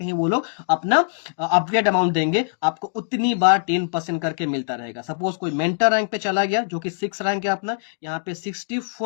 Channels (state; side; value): silent; right; digital silence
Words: वो लोग अपना अपग्रेड अमाउंट देंगे, आपको उतनी बार 10% करके मिलता रहेगा। सपोज कोई मेंटर रैंक पे चला गया जो कि 6 रैंक है अपना, यहाँ पे